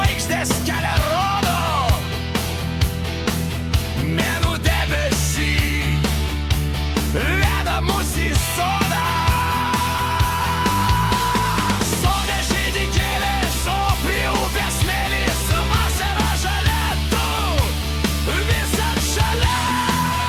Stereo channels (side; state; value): both; identical; correlation 1.00